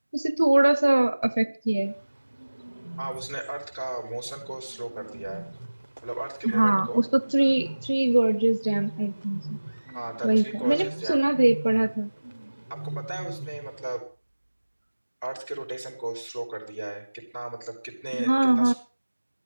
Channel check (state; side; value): inverted; both; correlation -1.00